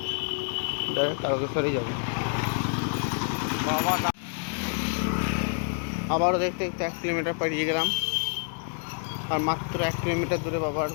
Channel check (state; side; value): silent; right; 60 dB below the other